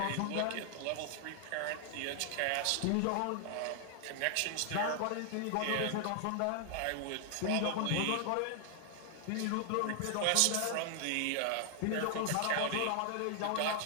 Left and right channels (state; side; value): different; both; correlation 0.00